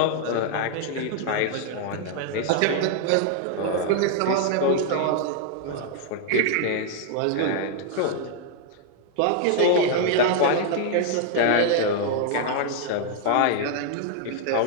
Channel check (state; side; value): different; both; correlation 0.00